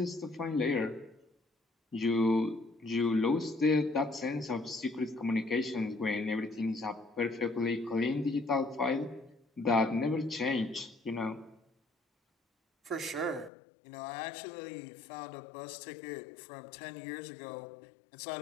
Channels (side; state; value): right; drops out; at 13.5 s